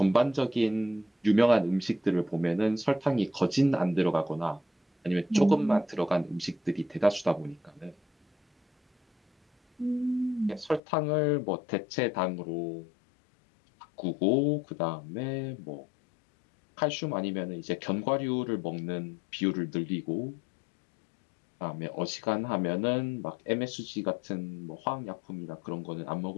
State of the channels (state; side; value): drops out; right; at 10.8 s